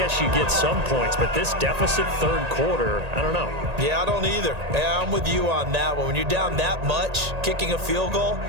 you get some points, but this deficit 3rd quarter, I don't know. Yeah, I don't either. Yeah, I'm with you on that one. When you're down that much, kicking a field goal,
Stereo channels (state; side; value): late; left; 1.8 ms